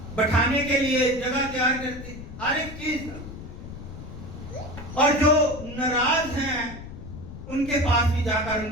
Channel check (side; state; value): left; noise; rumble, 12 dB below the sound